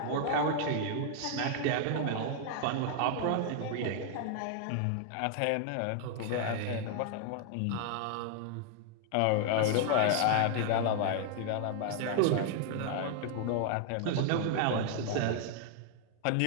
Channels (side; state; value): both; different; correlation 0.00